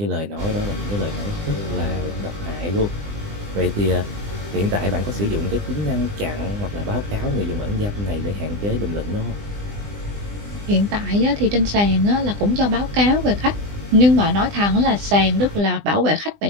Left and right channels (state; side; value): late; left; 20 ms